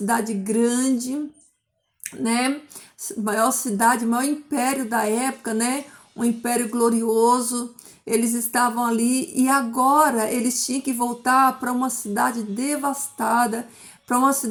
grande, né? Maior cidade, maior império da época, né? Um império glorioso. Eles estavam ali e agora eles tinham que voltar para uma cidade devastada, para uma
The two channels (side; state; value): both; identical; correlation 1.00